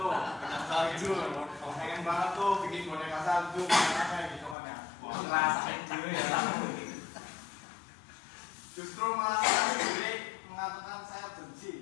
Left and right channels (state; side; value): drops out; right; at 4.5 s